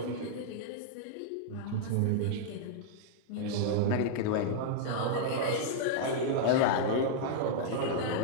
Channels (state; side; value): different; both; correlation -0.01